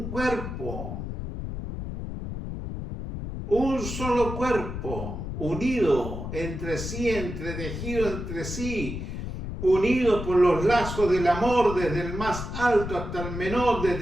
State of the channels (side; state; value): left; noise; rumble, 6 dB below the sound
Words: cuerpo, un solo cuerpo, unido entre sí, entretejido entre sí, unido por los lazos del amor, desde el más alto hasta el menor,